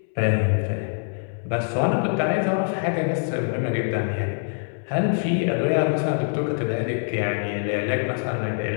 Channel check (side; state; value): right; silent; 62 dB below the other